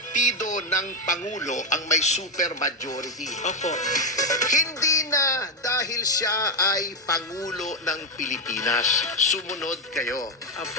ng pangulo ang may super majority. Opo. Hindi na dahil siya ay pangulo ng Pilipinas. Sumunod kayo.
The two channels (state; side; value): normal; both; correlation 0.06